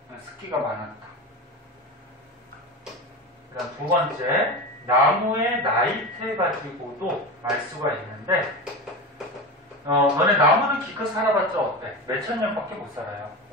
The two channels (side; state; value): both; normal; correlation 0.24